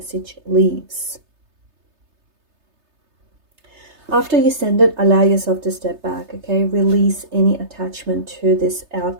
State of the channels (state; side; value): late; left; 3.3 ms